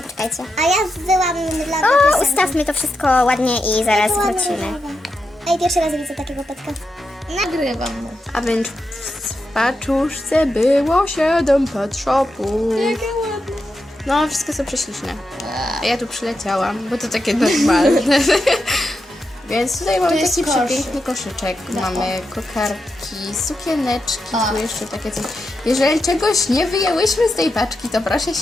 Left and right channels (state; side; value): normal; both; correlation 0.87